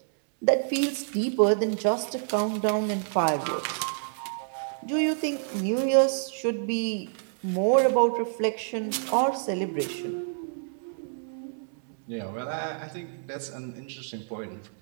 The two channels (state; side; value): silent; left; 59 dB below the other